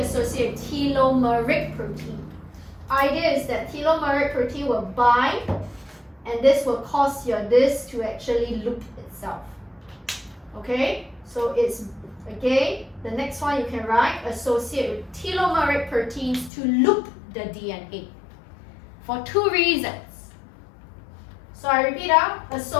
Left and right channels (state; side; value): drops out; right; at 16.5 s